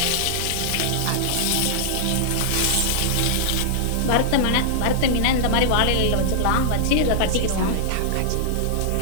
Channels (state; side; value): different; both; correlation -0.01